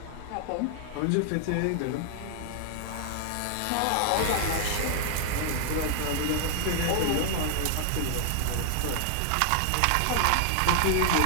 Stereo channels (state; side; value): different; both; correlation 0.00